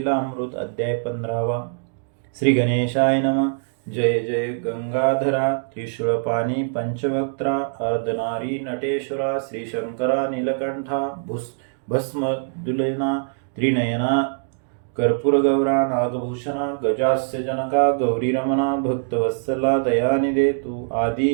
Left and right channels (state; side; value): silent; left; digital silence